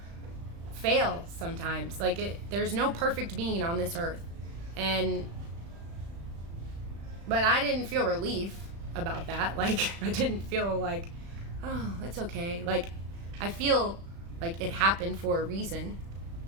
fail sometimes. Like, there's no perfect being on this earth. But I didn't feel relief about that. Like, I didn't feel like, oh, it's okay. Like, I feel like it happened for a reason.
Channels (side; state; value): left; late; 36 ms